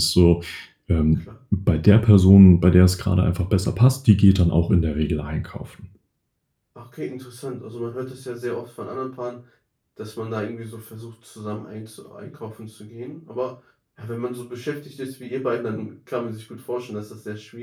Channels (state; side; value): identical; both; correlation 1.00